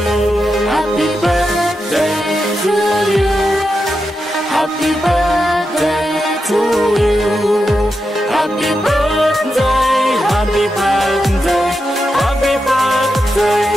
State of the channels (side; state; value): both; normal; correlation 0.87